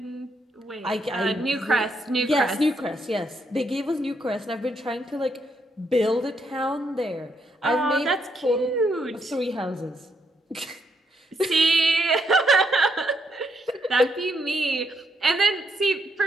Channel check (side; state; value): both; normal; correlation 0.76